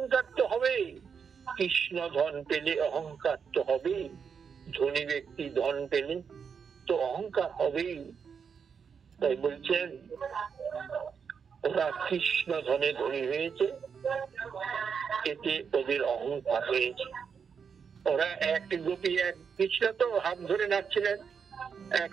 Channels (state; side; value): quieter; left; 6.5 dB